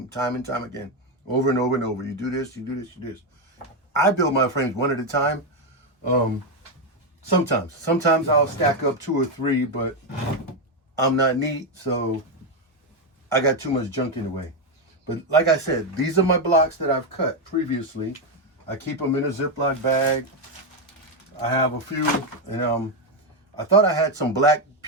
time and time again, over and over and over. You do this, you do this, you do this. I build my frames one at a time. Sometimes I'll stack up 2 or 3, but I'm not neat, so I got too much junk in the way. But like I said, these are my blocks that I've cut previously. I keep them in a Ziploc bag. I have a few, and I thought I had some black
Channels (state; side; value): normal; both; correlation 0.06